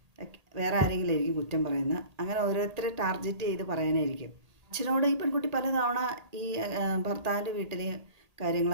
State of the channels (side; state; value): left; late; 1.8 ms